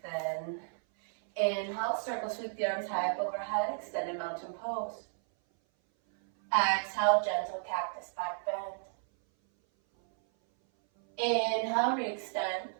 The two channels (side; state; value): left; silent; 56 dB below the other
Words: Inhale, circle sweep the arms high up overhead, extended mountain pose. Exhale, gentle cactus back bend. Inhale, re-extend.